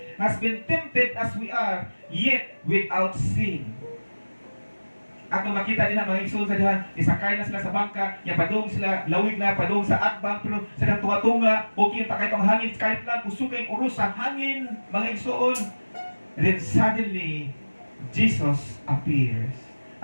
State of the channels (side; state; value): both; inverted; correlation -1.00